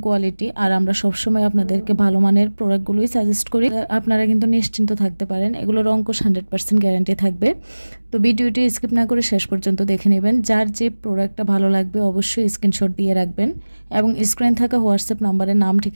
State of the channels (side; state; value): both; inverted; correlation -1.00